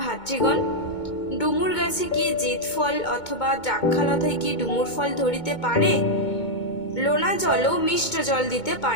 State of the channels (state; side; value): late; right; 2.2 ms